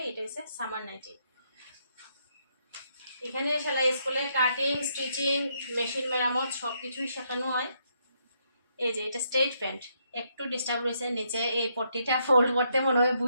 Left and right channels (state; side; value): inverted; both; correlation -0.75